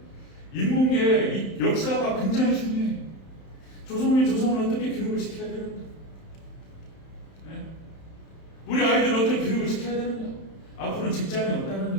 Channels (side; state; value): right; late; 31 ms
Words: 인문계의 이 역사가 굉장히 중요해요. 조성을 어떻게 교육을 시켜야 되는가? 네? 우리 아이들을 어떻게 교육을 시켜야 되는가? 앞으로는 직장이 없다는